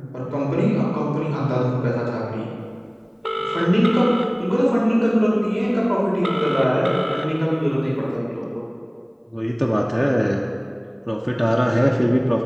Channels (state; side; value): identical; both; correlation 1.00